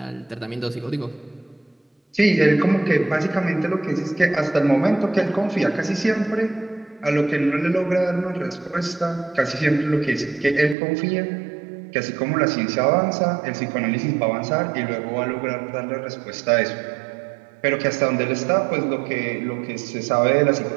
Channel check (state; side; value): drops out; left; at 10.8 s